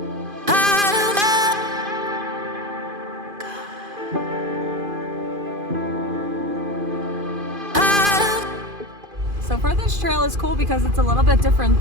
So far, this trail is cool because it's a little bit different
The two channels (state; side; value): late; left; 2.5 ms